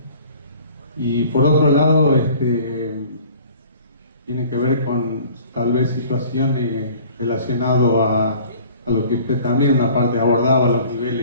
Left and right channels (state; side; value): inverted; both; correlation -0.49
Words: y por otro lado tiene que ver con tal vez situaciones relacionadas a lo que usted también una parte abordaba, los